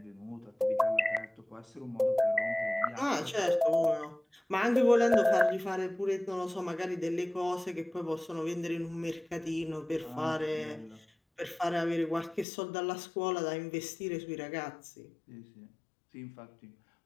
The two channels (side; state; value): right; drops out; at 12.5 s